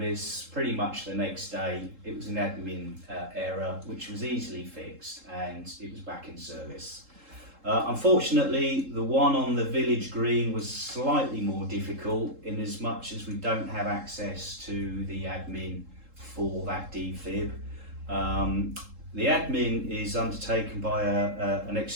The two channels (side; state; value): left; late; 3.7 ms